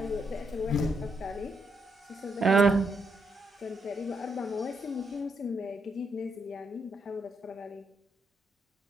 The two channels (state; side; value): normal; both; correlation 0.78